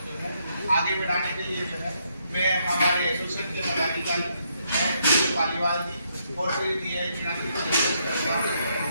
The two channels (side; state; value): both; inverted; correlation -0.75